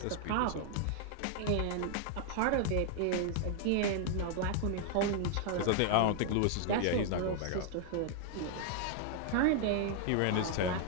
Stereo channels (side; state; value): both; different; correlation 0.00